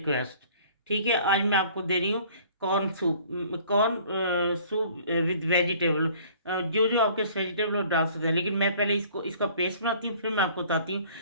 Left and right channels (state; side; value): inverted; both; correlation -0.53